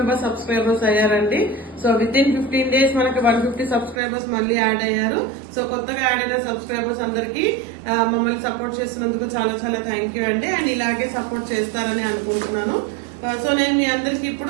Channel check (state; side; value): drops out; left; at 4.0 s